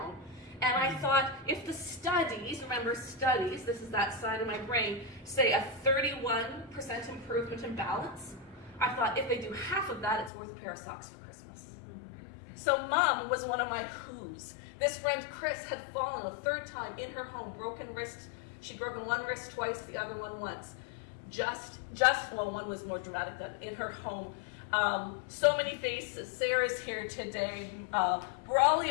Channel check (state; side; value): drops out; right; at 10.3 s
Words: And I thought, if the studies, remember studies, this is that side of my brain, say a 31% improvement in balance, I thought if they do half of that, it's worth a pair of socks for Christmas. So Mom was one of my who's. This friend Chris had fallen a third time in her home, broken wrist. She'd broken one wrist twice, the other one once. Well, one was more dramatic than in her home. So many faces. Sarah's here today.